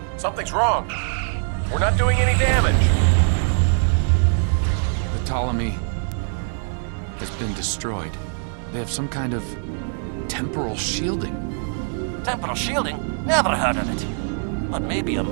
Something's wrong. We're not doing any damage. The Ptolemy has been destroyed. They have some kind of temporal shielding. Temporal shielding? Never heard of it. But maybe a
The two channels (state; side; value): silent; left; 64 dB below the other